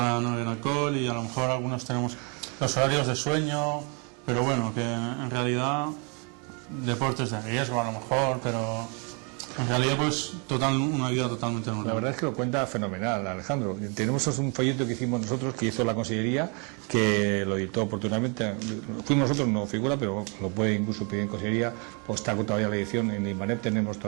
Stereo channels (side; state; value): left; quieter; 35.0 dB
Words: no beber alcohol, y a lo mejor algunos tenemos los horarios de sueño, pero bueno, que en realidad deportes de riesgo a lo mejor, pero en realidad pues una vida totalmente normal. La verdad es que lo cuenta fenomenal, Alejandro. Tenemos un folleto que hicimos nosotros, que hizo la Consellería, que lo editó oportunamente. Fuimos nosotros, no figura, pero lo puede incluso pedir en Consellería, pues está todavía la edición en Inbanet, tenemos